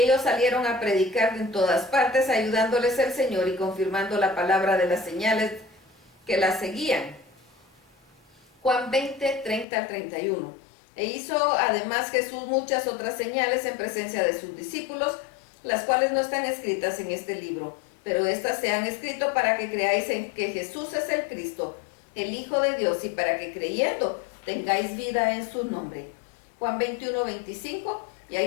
salieron a predicar en todas partes, ayudándoles el Señor y confirmando la palabra de las señales que la seguían. Juan 20, 30 al 31. E hizo además Jesús muchas otras señales en presencia de sus discípulos, las cuales no están escritas en este libro, pero estas se han escrito para que creáis en que Jesús es el Cristo, el Hijo de Dios, y para que creyendo tengáis vida en su nombre. Juan 21, 25. Y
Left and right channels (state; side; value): drops out; right; at 9.7 s